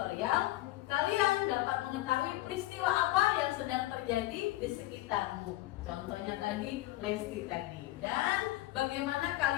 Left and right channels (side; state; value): right; quieter; 17.3 dB